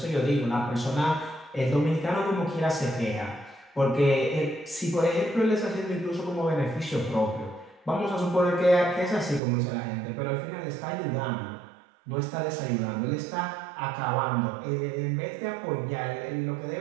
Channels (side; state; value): left; drops out; at 9.4 s